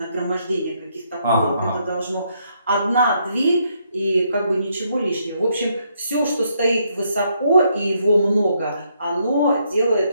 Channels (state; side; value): inverted; both; correlation -0.74